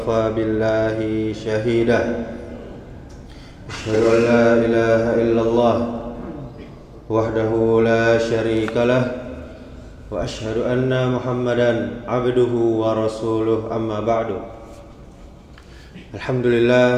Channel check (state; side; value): identical; both; correlation 1.00